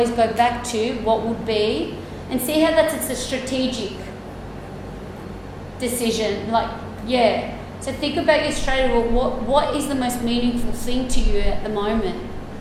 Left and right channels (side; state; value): both; identical; correlation 1.00